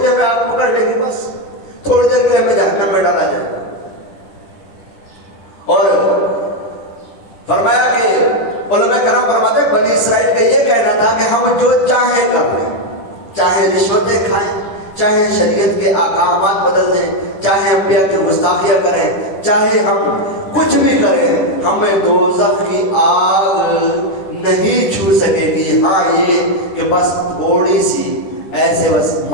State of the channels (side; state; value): right; late; 10 ms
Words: لیے ہمیں آگ پکڑ لے گی، بس تھوڑی دیر کے لیے ہمیں جہنم میں ڈالا جائے گا. اور فرمایا کہ علماء کرام فرماتے ہیں بنی اسرائیل کا یہ کہنا تھا کہ ہم جو چاہیں کر لیں، چاہے رشوتیں کھائیں، چاہے شریعت کے احکامات بدل دیں، چاہے انبیاء کی گستاخیاں کریں، چاہے ہم کچھ بھی کریں، ہمیں دوزخ کی آگ نہیں چھو سکے گی. ہاں یہ کہ بس تھوڑی سی ایسے بس